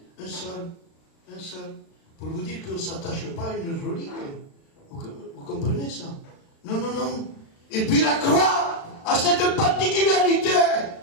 Un seul. Pour vous dire qu'on ne s'attache pas à une relique. Vous comprenez ça? Non, non, non. Et puis la croix a cette particularité.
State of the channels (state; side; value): late; right; 36 ms